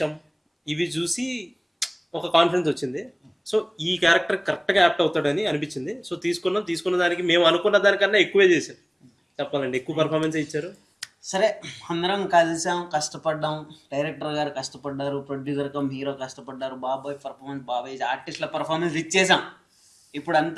ఇవి చూసి ఒక కాన్ఫిడెన్స్ వచ్చింది. సో ఈ క్యారెక్టర్ కరెక్ట్గా యాప్ట్ అవుతాడని అనిపించింది. సో తీసుకున్న దానికి మేము అనుకున్న దానికన్నా ఎక్కువే చేశారు. చెప్పాలండి, ఎక్కువ పర్ఫార్మెన్స్ ఇచ్చారు. సరే, అందరం కలిసాం, కష్టపడ్డాం. డైరెక్టర్ గారు కష్టపడ్డారు, ప్రొడ్యూసర్ కమ్ హీరో కష్టపడ్డారు, బాబాయ్ పర్ఫార్మెన్స్, బాబాయ్ ఆర్టిస్ట్ల పర్ఫార్మెన్స్ ఇచ్చేసాం. ఇప్పుడు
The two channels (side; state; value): both; identical; correlation 1.00